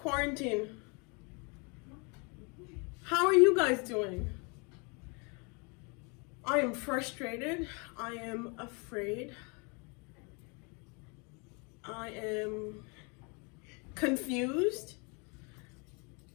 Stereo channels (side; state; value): right; quieter; 32.2 dB